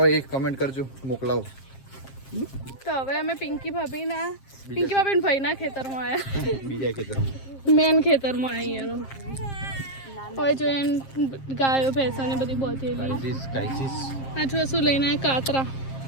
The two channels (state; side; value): late; right; 7.5 ms